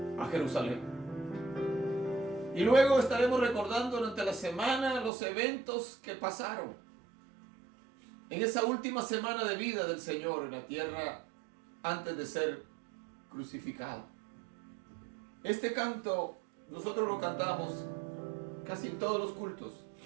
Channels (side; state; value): left; drops out; at 5.1 s